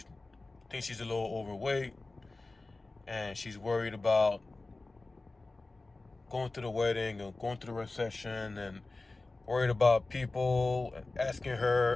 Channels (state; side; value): quieter; right; 3.3 dB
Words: thinks she's a little overweight, and she's worried about going to the wedding and going to the reception, and worried about people asking